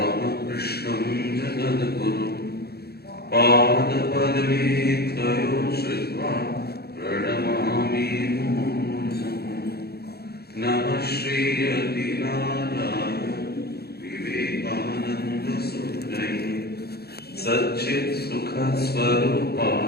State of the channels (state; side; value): late; right; 0.46 ms